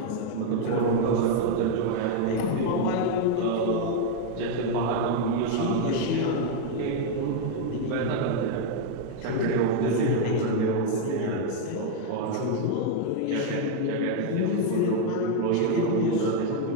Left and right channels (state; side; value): different; both; correlation 0.01